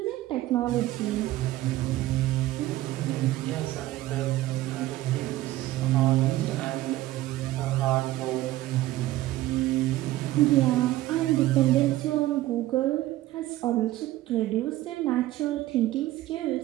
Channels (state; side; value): quieter; left; 15.9 dB